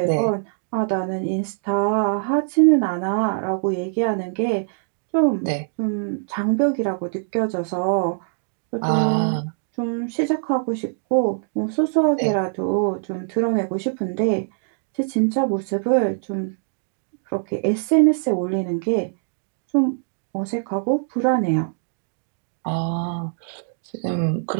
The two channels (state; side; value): silent; left; digital silence